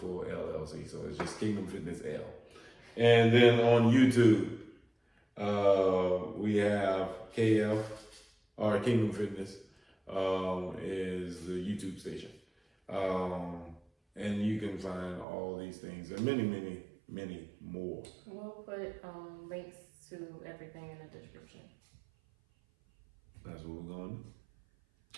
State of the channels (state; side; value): drops out; left; at 15.2 s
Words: LLC, so it's just Kingdom Fitness L. And then on YouTube, we have KF or Kingdom Fitness is the YouTube station. And you can find all these things and many, many, many more. We'll put links to everything in the description. That's what we're going to do.